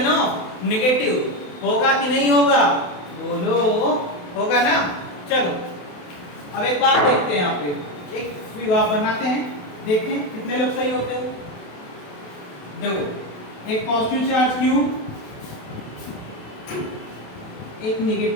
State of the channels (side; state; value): right; late; 28 ms